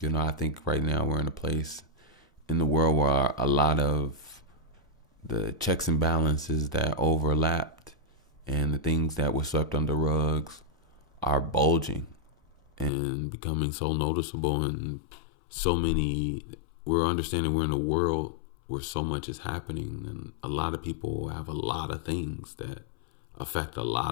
I think right now we're in a place in the world where a lot of the checks and balances that overlapped and the things that were swept under rugs are bulging and becoming so noticeable, and so many, we're understanding we're in a world where so much is happening, and a lot of people have a lot of things that affect a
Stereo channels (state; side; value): drops out; right; at 12.9 s